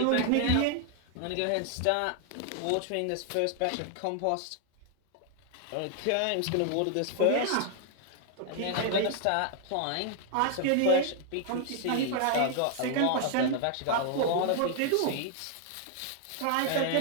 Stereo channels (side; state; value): both; different; correlation 0.00